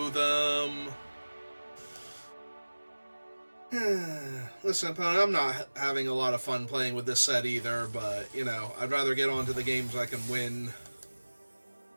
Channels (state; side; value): inverted; both; correlation -1.00